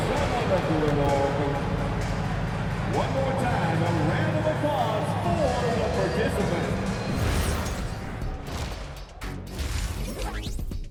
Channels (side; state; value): both; identical; correlation 1.00